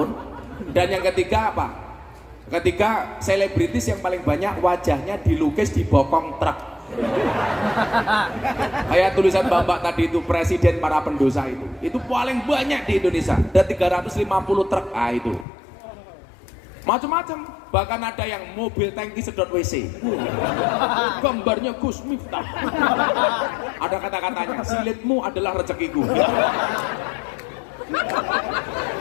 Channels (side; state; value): right; drops out; at 15.5 s